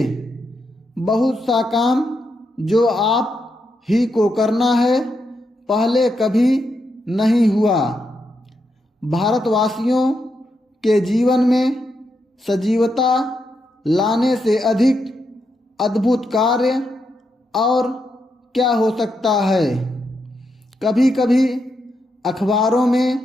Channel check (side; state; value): both; normal; correlation 0.83